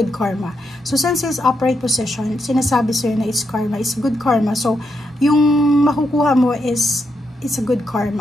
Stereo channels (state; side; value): normal; both; correlation 0.81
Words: karma. So, since it's upright position, sinasabi sa'yo na it's karma. It's good karma. So, yung makukuha mo is, it's a good